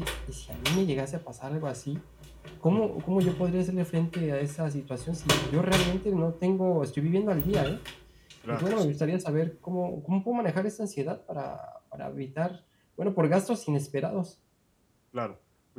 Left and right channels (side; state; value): both; identical; correlation 1.00